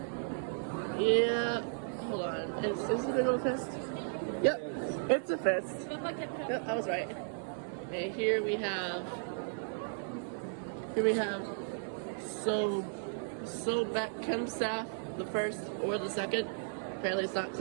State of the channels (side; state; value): left; silent; digital silence